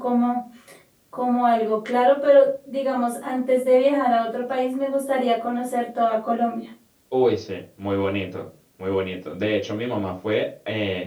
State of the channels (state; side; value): identical; both; correlation 1.00